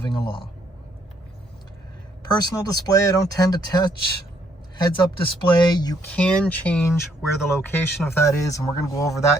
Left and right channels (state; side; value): normal; both; correlation 0.70